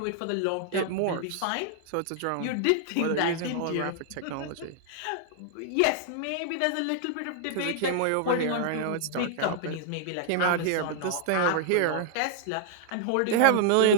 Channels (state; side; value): different; both; correlation -0.01